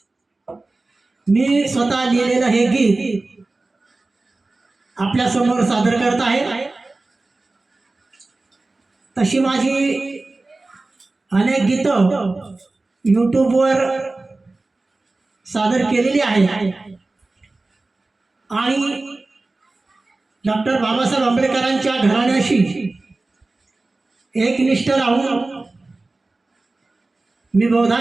मी स्वतः लिहिलेलं हे गीत आपल्या समोर सादर करत आहे। तशी माझी अनेक गीतं यूट्यूबवर सादर केलेली आहेत आणि डॉक्टर बाबासाहेब आंबेडकरांच्या घराण्याशी एकनिष्ठ राहून मी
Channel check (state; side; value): quieter; left; 3.2 dB